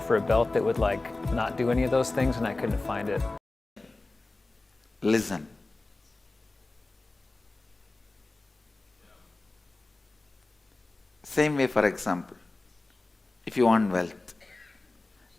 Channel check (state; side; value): quieter; right; 3.1 dB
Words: a belt that would like not do any of those things, and I couldn't find it. Listen. Same way, for example, if you want wealth,